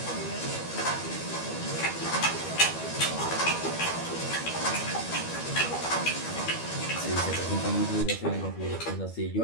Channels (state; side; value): late; right; 12 ms